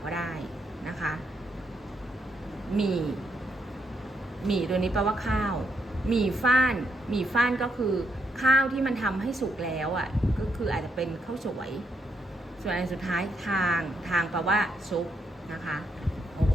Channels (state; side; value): normal; both; correlation 0.78